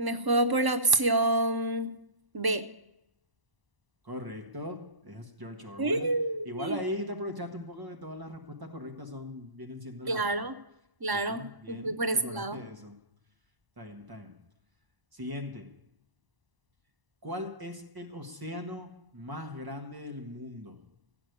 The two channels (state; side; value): late; left; 1.0 ms